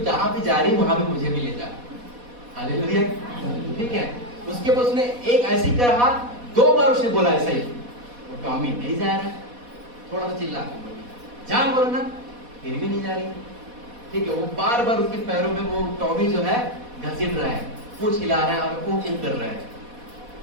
जहां भी जा रही है वहां भी मुझे भी ले जा। हालेलुया। ठीक है। उसके बाद उसने एक ऐसी कहा, 2 बार उसने बोला ऐसा ही। वो टॉमी नहीं जा रहा है, थोड़ा सा चिल्ला के बोली जा, बोलो ना, फिर भी नहीं जा रही, ठीक है। वो बार बार उसके पैरों में वो टॉमी जो है घसीट रहा है, पूछ हिला रहा है और वो कर रहा है।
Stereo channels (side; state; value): left; late; 4.1 ms